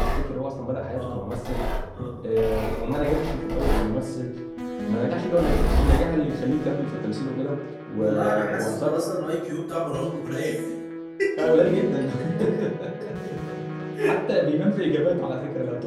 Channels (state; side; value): identical; both; correlation 1.00